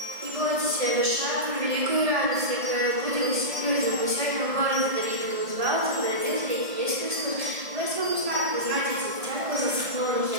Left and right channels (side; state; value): left; late; 1.6 ms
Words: бойтеся, вишаем великую радость, которая будет людям. Мы сегодня в городе Давида узнаваться, родился есть Христос. Вы своему знаку знаете, дитятку за склоном